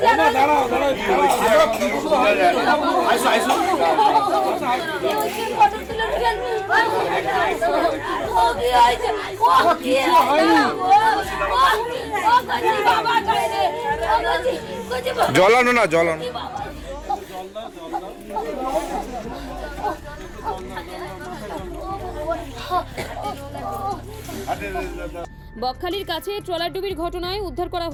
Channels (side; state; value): both; identical; correlation 1.00